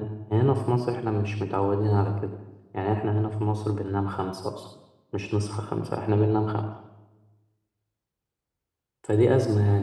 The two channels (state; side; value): identical; both; correlation 1.00